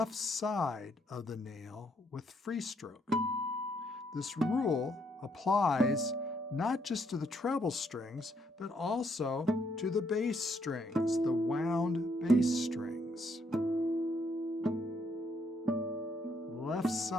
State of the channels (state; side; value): normal; both; correlation 0.72